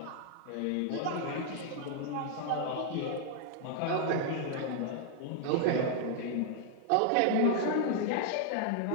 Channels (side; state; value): both; different; correlation 0.00